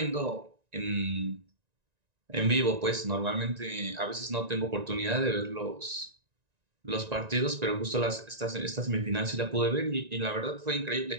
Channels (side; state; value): left; late; 1.9 ms